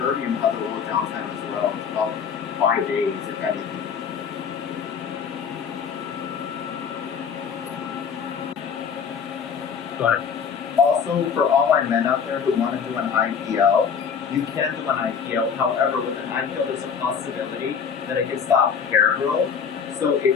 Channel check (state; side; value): quieter; right; 6.7 dB